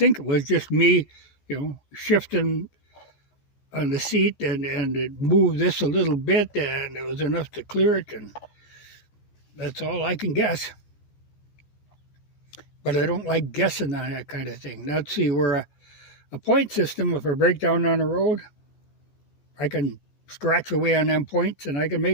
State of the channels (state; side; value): late; right; 14 ms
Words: it was just me, shifting on the seat and it moved this a little bit and it was enough to clear it, and that's all I can guess. But I don't like guessing on that kind of thing. Now, see, we're a point system. If I break down on the road, I can scratch away on them points and I can